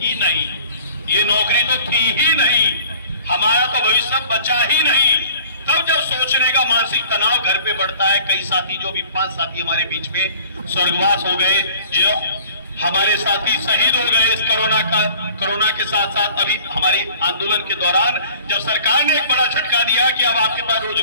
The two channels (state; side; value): inverted; both; correlation -0.49